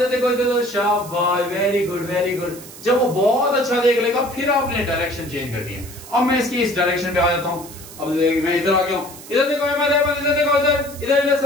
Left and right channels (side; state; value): right; noise; hiss, 16 dB below the sound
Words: देखो, शाबाश, वेरी गुड। जब वो बहुत अच्छा देख लेगा फिर आपने डायरेक्शन चेंज करनी है। अब मैं इसकी इस डायरेक्शन पे आ जाता हूं। अब मैं इधर आ गया हूं। इधर देखो अहमद, इधर देखो, इधर